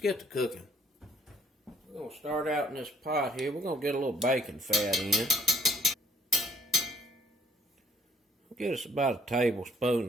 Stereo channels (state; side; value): normal; both; correlation 0.62